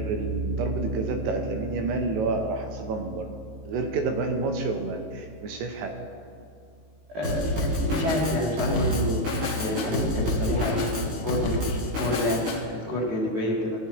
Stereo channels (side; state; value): left; late; 18 ms